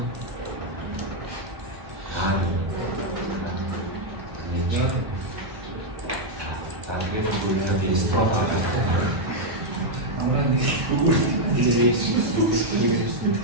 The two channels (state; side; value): late; left; 1.1 ms